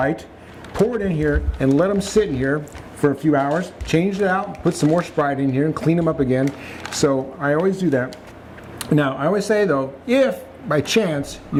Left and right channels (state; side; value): identical; both; correlation 1.00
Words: pour it in here, and let them sit in here for a few hours. Change it out, put some more Sprite in here, and clean them up again. So I always do that. Now, I always say though, if by chance